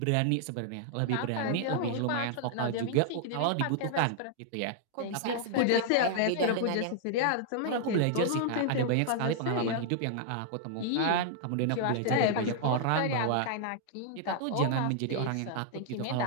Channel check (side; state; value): both; different; correlation -0.01